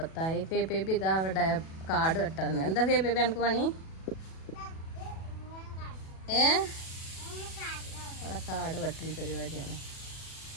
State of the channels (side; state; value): right; late; 37 ms